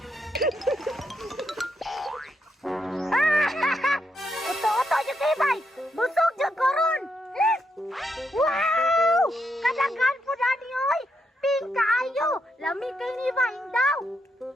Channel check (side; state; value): both; normal; correlation 0.80